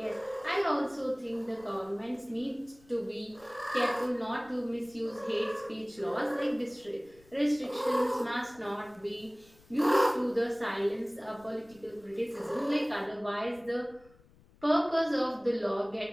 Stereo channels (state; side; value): noise; left; rumble, 27 dB below the sound